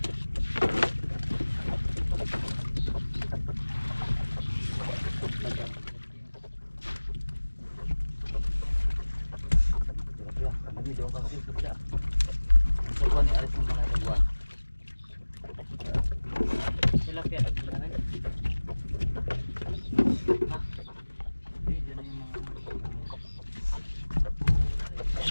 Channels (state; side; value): inverted; both; correlation -1.00